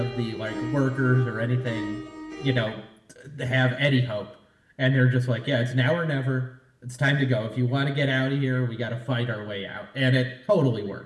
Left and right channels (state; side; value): identical; both; correlation 1.00